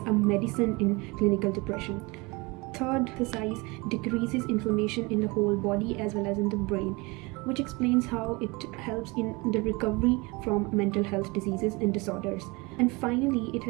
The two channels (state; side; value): quieter; left; 25.7 dB